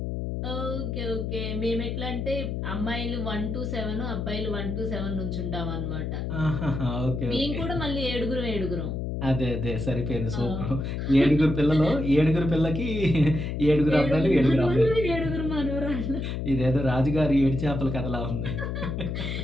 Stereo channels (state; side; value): noise; left; hum, 3 dB below the sound